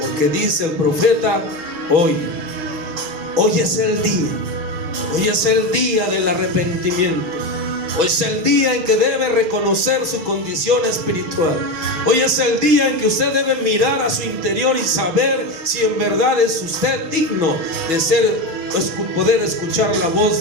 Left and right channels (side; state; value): left; late; 6.1 ms